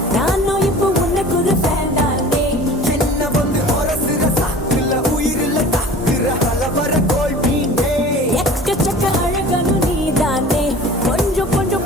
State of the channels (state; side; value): normal; both; correlation 0.42